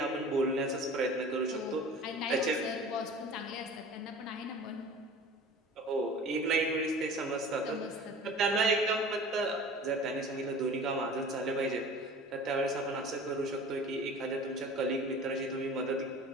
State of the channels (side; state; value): both; normal; correlation 0.41